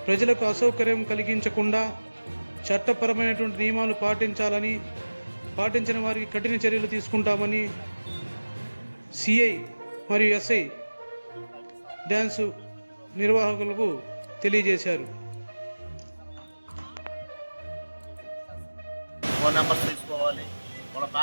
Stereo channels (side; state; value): both; inverted; correlation -1.00